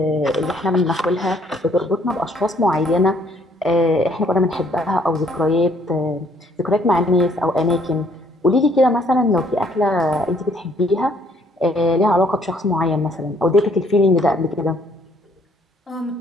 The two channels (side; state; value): both; normal; correlation 0.64